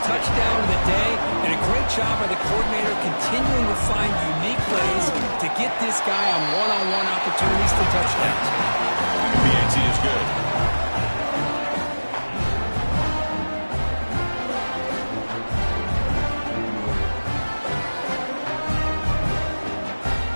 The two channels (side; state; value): both; inverted; correlation -1.00